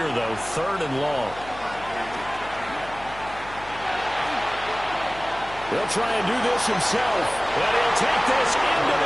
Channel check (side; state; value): left; noise; hum, 17 dB below the sound